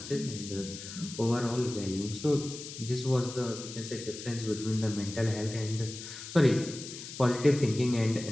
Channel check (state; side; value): noise; left; hiss, 11 dB below the sound